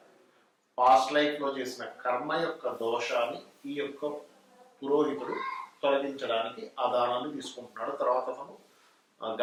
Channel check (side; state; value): both; identical; correlation 1.00